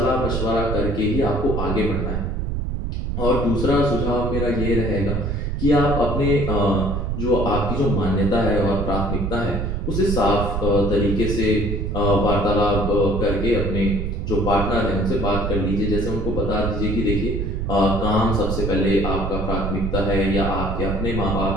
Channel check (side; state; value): right; noise; rumble, 2 dB below the sound